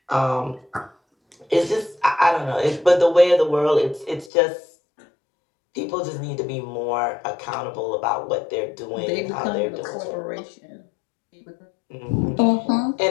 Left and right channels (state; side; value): drops out; right; at 4.3 s